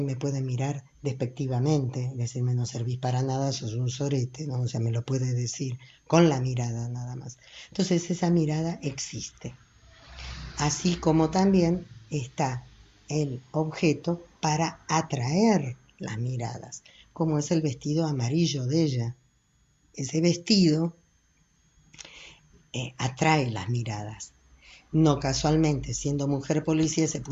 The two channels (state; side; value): identical; both; correlation 1.00